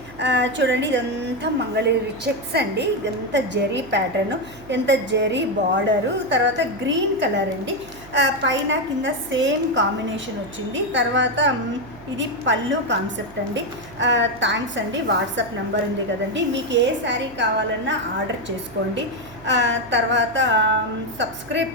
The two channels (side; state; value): right; noise; hum, 20 dB below the sound